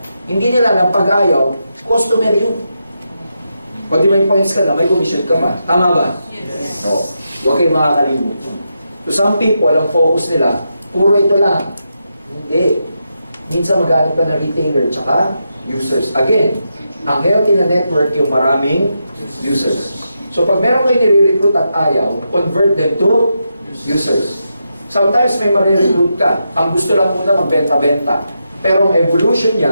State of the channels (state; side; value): inverted; both; correlation -0.85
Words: Hindi nila lang pag ayaw, customer yun. Pag di may points ka na, may commission ka pa. Tama ba? Yes. No. Huwag kayong makakalimutan. To some people, ang focus nila, puro ito lang. Hindi. Minsan maghanap ka na retailer tsaka users. Again, ang healthy na network yung maraming users. So pag meron kayo nire-recruit at ayaw, convert them to users. Sometimes may marirecruit ka. Ang gusto lang muna magbenta-benta. Pero ang evolution